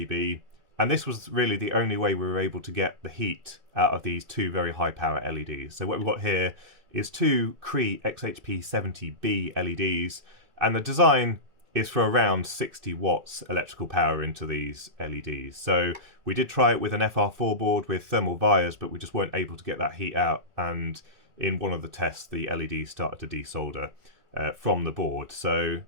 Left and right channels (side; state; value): left; late; 2.3 ms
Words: and this was really the only way we were able to get the heat out of these two very high power LEDs. So what we've got here is two Cree XHP70B LEDs, and the design is for around 60 watts electrical power into these LEDs. So we did try it with an FR4 board with thermal vias, but we just weren't able to get that heat out, and in one of the tests the LEDs started to desolder from the board. So